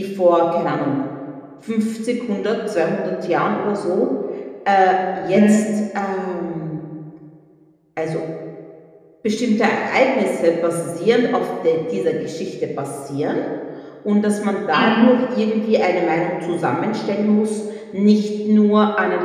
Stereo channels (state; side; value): identical; both; correlation 1.00